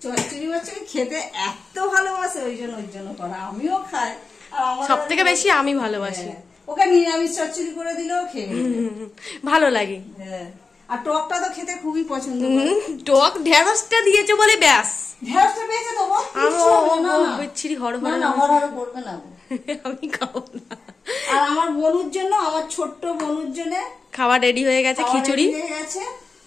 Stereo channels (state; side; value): quieter; right; 4.3 dB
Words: চচ্চড়ি খেতে এত ভালোবাসে, ওই জন্য করা। আমিও খাই, সব থেকে বেশি আমি ভালোবাসি। ওকে নিরামিষ চচ্চড়ি করে দিলেও খেয়ে ভালো লাগে। হ্যাঁ, আর টকটা তো খেতে খুবই পছন্দ। টক ঢেঁড়সটা দিয়েছে বলে ব্যাস, ঢেঁড়সটা পেয়েছে তো বিচ্ছিরি হড় করবে না, আমি খাবো না। আর আমার বনুর জন্য, আমার ছোট্ট বনুর জন্য খাবার রেডি হয়ে গেছে, খিচুড়ি হয়ে গেছে।